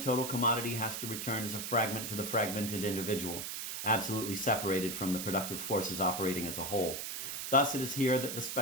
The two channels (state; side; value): noise; right; hiss, 5 dB below the sound